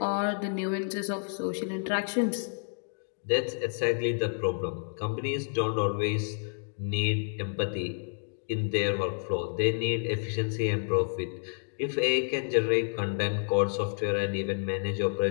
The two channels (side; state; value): right; silent; digital silence